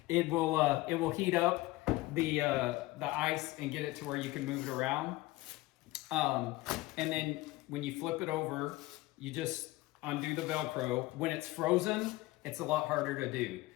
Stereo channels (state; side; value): quieter; right; 19.2 dB